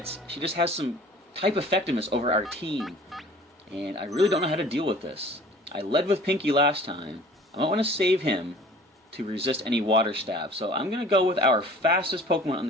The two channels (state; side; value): normal; both; correlation 0.48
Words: she just has some type effectiveness over our team, and I really don't know how to deal with this. I led with Pinky last time. I might want to save him to resist any water stab, so I'm going to go with our fastest Pokemon on